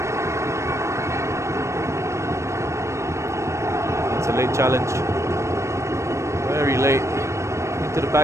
That's a late challenge. Very late. Into the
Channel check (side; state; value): left; late; 0.14 ms